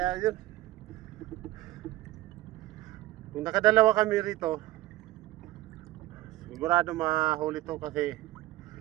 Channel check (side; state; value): left; quieter; 16.5 dB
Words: yun. Kung nakadalawa kami rito, sigurado mahuli to kasi